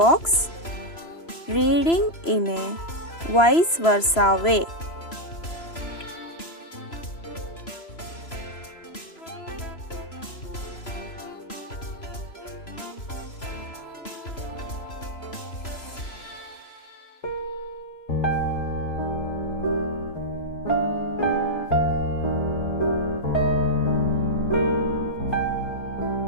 reading in a vice versa way.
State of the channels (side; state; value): right; late; 3.0 ms